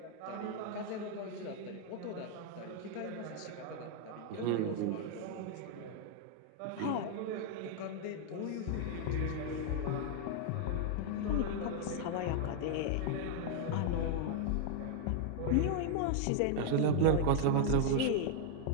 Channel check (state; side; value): different; both; correlation 0.00